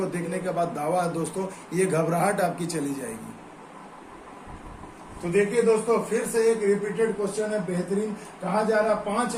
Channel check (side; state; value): both; identical; correlation 1.00